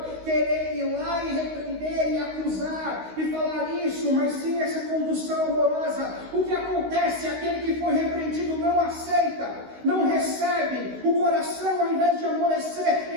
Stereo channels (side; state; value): left; late; 16 ms